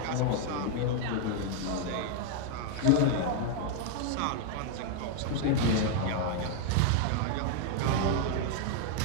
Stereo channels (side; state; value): both; different; correlation 0.00